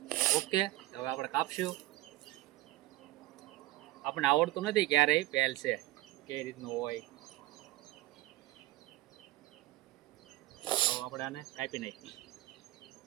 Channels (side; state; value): left; quieter; 17.8 dB